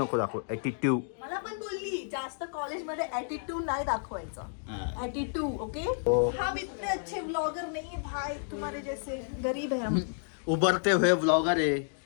दाखव, ॲटिट्यूड. मला पण बोलली जास्त कॉलेजमध्ये ॲटिट्यूड नाही दाखवायचा. Attitude okay. हम इतने अच्छे व्लॉगर नहीं भाई, तुम्हारे जैसे गरीब है हम. उभरते हुए व्लॉगर आहे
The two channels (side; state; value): right; silent; digital silence